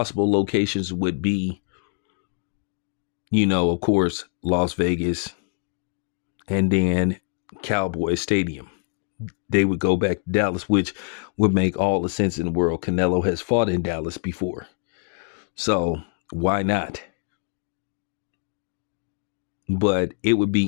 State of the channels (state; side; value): silent; right; 60 dB below the other